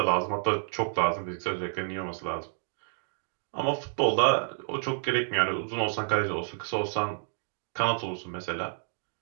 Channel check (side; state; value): left; silent; digital silence